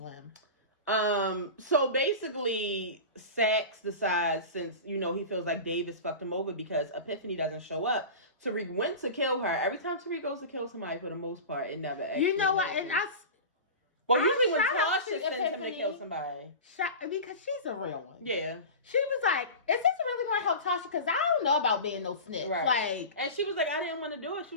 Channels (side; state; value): both; inverted; correlation -0.30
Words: So basically, Saxe decides, since, you know, he feels like Davis fucked him over because Epiphany doesn't show up, Tariq went to kill her. Every time Tariq goes to kill somebody, for the most part, it never actually You know what? happens. And Well, usually when Tasha sends him to kill somebody. Because she's a real one. Yeah. She was like, is this really going to help Tasha? Because I don't know about being no snitch. Right. Like, and she was like, I didn't want to do it. She